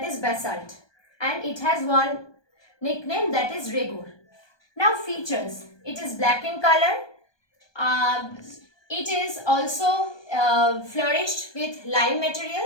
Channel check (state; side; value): late; right; 1.2 ms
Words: is basalt, and it has one nickname, that is regur. Now features, it is black in color, it is also flourished with lime